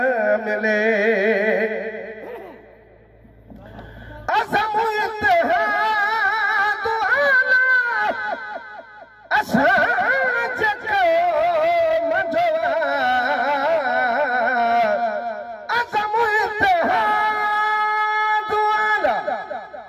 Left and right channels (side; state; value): both; identical; correlation 1.00